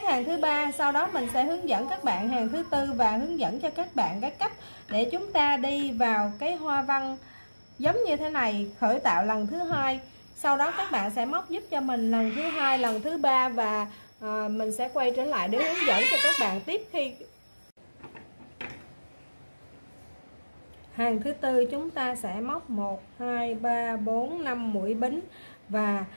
hàng thứ ba, sau đó mình sẽ hướng dẫn các bạn hàng thứ tư và hướng dẫn cho các bạn cái cách để chúng ta đi vào cái hoa văn giống như thế này, khởi tạo lần thứ hai. Sau đó các bạn sẽ móc giúp cho mình lần thứ hai, lần thứ ba và mình sẽ quay trở lại để hướng dẫn cho các bạn tiếp. Khi hàng thứ tư chúng ta sẽ móc 1 2 3 4 5 mũi bính và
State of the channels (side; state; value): both; inverted; correlation -1.00